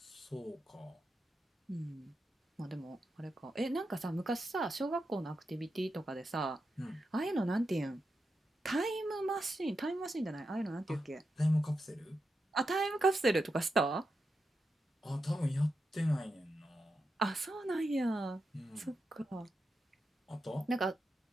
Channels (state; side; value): normal; both; correlation 0.87